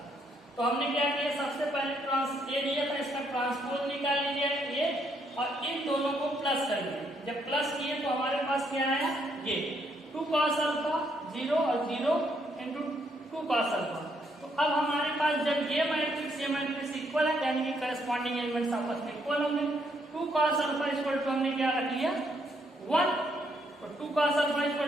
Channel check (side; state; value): both; normal; correlation 0.73